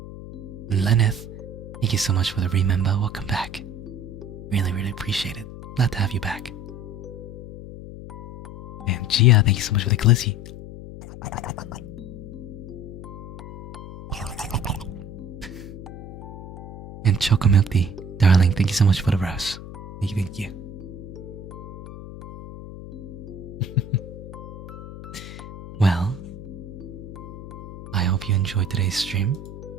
And Lenneth, thank you so much for the remember. Welcome back. Really, really appreciate it. Glad to have you back. And Gia, thank you so much for the glizzy. And Choco Milk Tea, darling, thank you so much for the rose. Thank you. Well, I hope you enjoyed today's stream.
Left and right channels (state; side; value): noise; left; hum, 12 dB below the sound